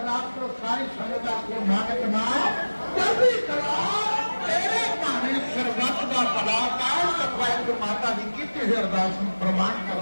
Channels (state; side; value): inverted; both; correlation -1.00